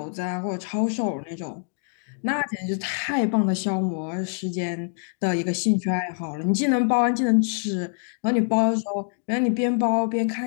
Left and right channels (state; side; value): silent; right; 62 dB below the other